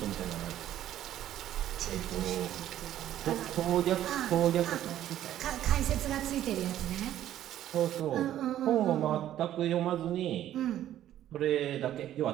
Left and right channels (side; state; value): left; quieter; 12.1 dB